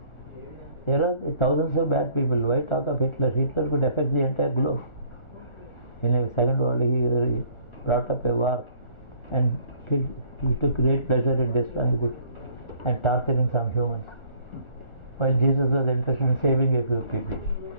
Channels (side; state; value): right; late; 1.4 ms